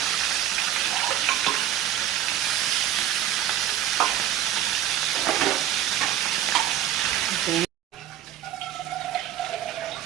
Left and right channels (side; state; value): left; quieter; 11.6 dB